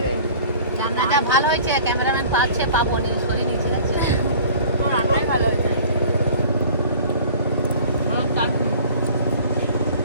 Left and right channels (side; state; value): both; inverted; correlation -0.46